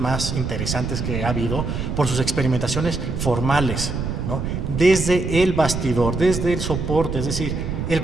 interesantes que ha habido por sus experimentaciones formales, ¿no?, desde el bastidor, desde el soporte, es decir, el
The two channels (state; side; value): noise; right; rumble, 3 dB below the sound